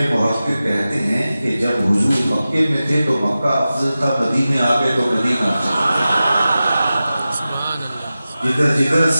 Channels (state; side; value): inverted; both; correlation -0.94